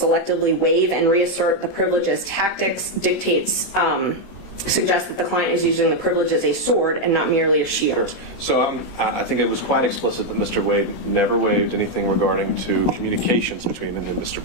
waive and reassert the privilege as tactics suggests that the client is using the privilege as a sword and not merely a shield. So I think it was quite explicit that Mr. Wade never waived anything regarding to communications between him and Mr.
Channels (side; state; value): right; late; 16 ms